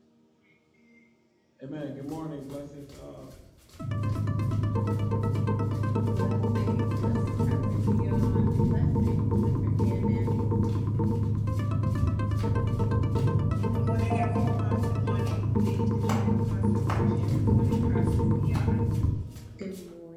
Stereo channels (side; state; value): both; identical; correlation 1.00